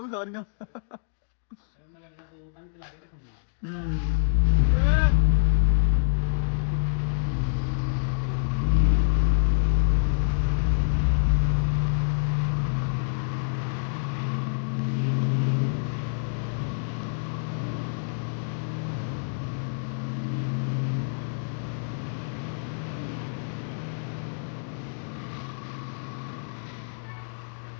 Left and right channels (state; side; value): silent; right; digital silence